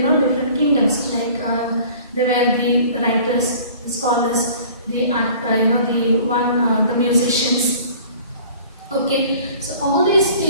kingdoms. Like there were the writers, the scholars, the the musicians. Okay, so all these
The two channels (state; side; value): inverted; both; correlation -0.48